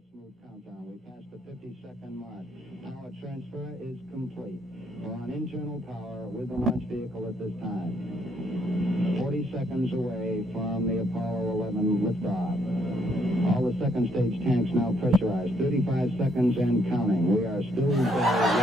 smooth countdown. We passed the 50-second mark. Power transfer is complete. We're on internal power with the launch vehicle at this time. 40 seconds away from the Apollo 11 liftoff. All the second stage tanks now pressurized. 35 seconds and counting. We are still there with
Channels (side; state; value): both; normal; correlation 0.71